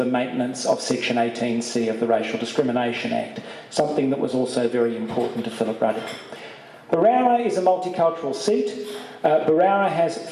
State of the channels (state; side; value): identical; both; correlation 1.00